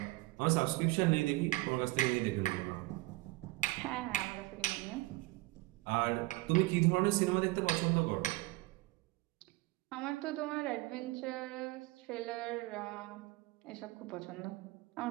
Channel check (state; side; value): quieter; left; 20.8 dB